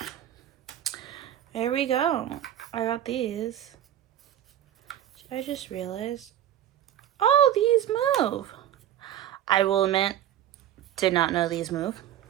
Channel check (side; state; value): left; quieter; 11.4 dB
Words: There we go. I got these. I just realized, oh, these move. I will admit, did not know these move.